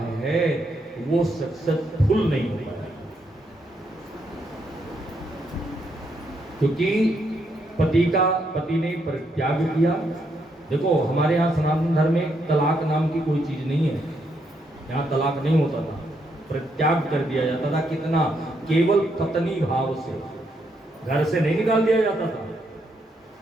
है वो सक्सेसफुल नहीं हो पाया, क्योंकि पति ने परित्याग किया। देखो हमारे यहाँ सनातन धर्म में तलाक नाम की कोई चीज नहीं है, यहाँ तलाक नहीं होता था, परित्याग कर दिया जाता था। कितना? केवल पत्नी भाव से, घर से नहीं निकाल दिया जाता था।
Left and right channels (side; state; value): both; normal; correlation 0.77